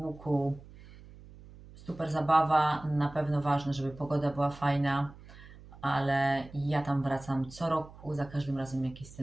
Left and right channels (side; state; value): right; noise; hum, 19 dB below the sound